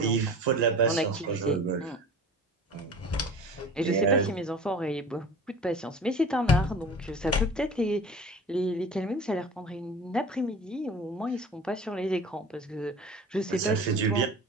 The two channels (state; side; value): normal; both; correlation 0.40